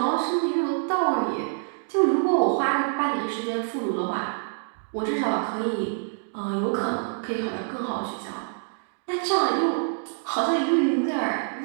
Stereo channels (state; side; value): silent; left; digital silence